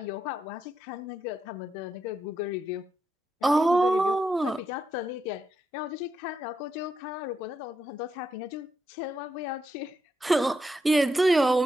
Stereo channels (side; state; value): both; normal; correlation 0.83